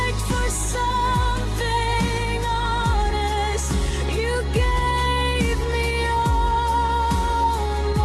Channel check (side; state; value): both; identical; correlation 1.00